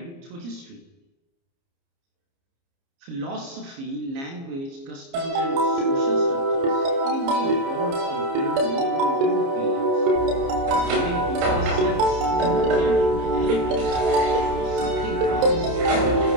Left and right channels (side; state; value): left; late; 29 ms